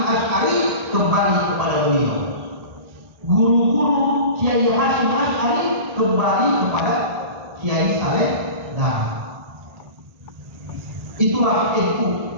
Asy'ari kembali kepada beliau. Guru-guru Kiai Hasyim Asy'ari kembali kepada Kiai Saleh Dahrak. Itulah itu.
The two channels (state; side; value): late; left; 1.8 ms